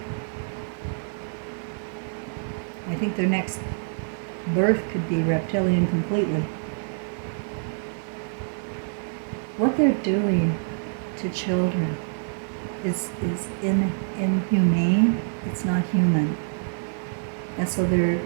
I think their next birth could be reptilian completely. What they're doing to children is inhumane. It's not human. And so their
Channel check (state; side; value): silent; left; digital silence